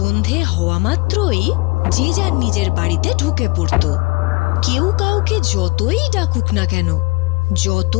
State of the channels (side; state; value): right; quieter; 26.4 dB